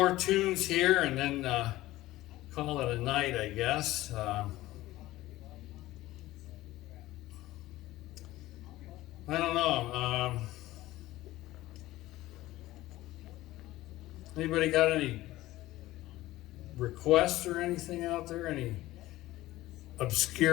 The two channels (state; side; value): quieter; right; 16.7 dB